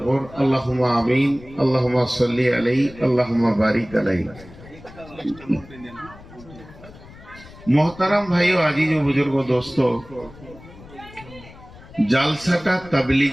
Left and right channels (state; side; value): noise; left; rumble, 20 dB below the sound